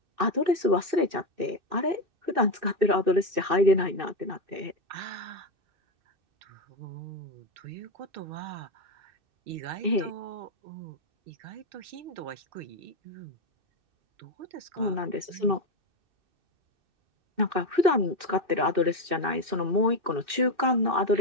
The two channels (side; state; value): left; late; 2.6 ms